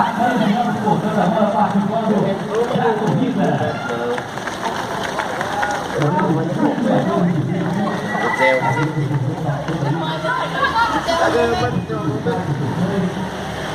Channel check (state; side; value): identical; both; correlation 1.00